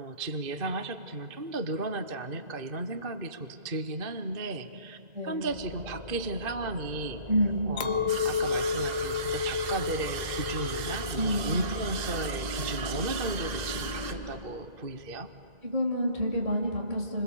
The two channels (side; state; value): left; late; 2.0 ms